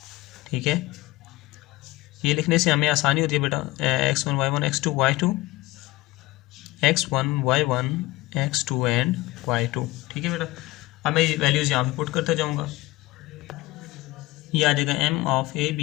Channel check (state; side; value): quieter; right; 19.3 dB